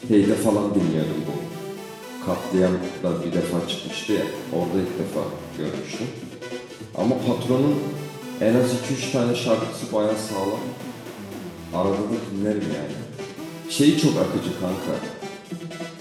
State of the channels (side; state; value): both; identical; correlation 1.00